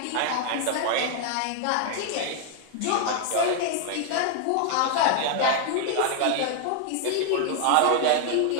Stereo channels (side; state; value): both; different; correlation 0.00